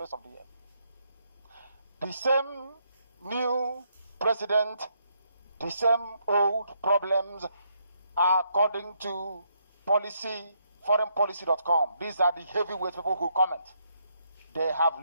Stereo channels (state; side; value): inverted; both; correlation -0.75